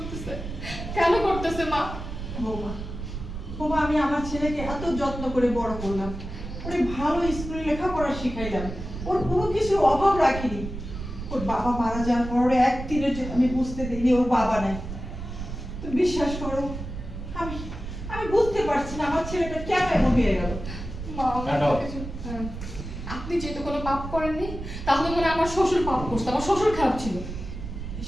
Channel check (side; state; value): right; noise; rumble, 8 dB below the sound